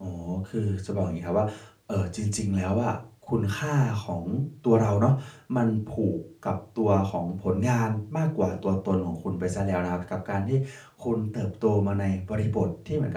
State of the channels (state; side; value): identical; both; correlation 1.00